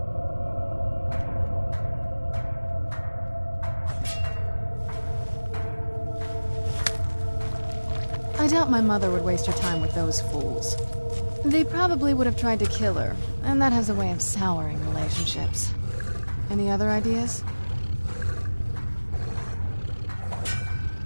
I doubt my mother would waste her time with those fools. They probably would have tried to kill her, and that has a way of souring relationships. Any other ideas?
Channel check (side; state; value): both; inverted; correlation -1.00